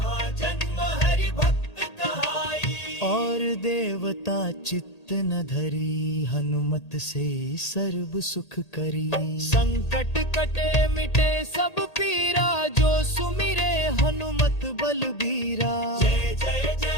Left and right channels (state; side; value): late; right; 1.8 ms